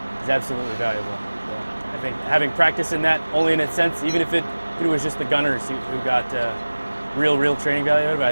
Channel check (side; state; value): both; inverted; correlation -1.00